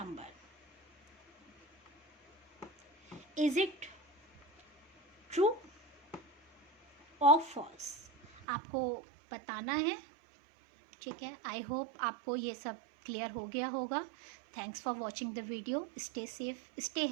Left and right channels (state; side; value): drops out; left; at 8.5 s